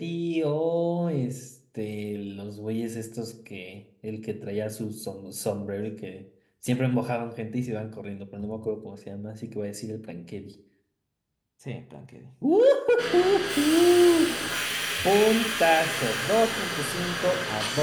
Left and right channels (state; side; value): identical; both; correlation 1.00